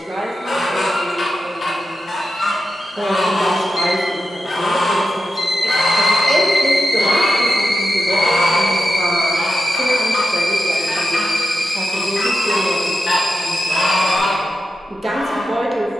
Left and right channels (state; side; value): normal; both; correlation 0.89